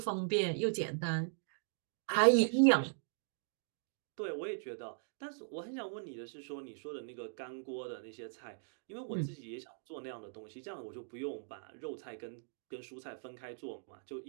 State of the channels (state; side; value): silent; left; digital silence